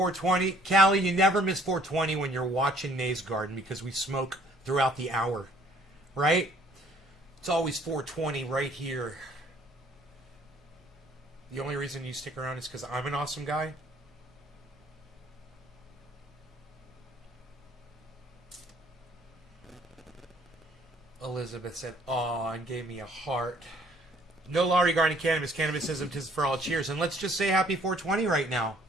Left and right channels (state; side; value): normal; both; correlation 0.59